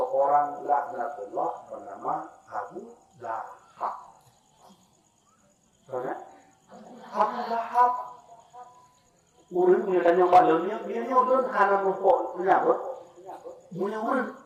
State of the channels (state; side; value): identical; both; correlation 1.00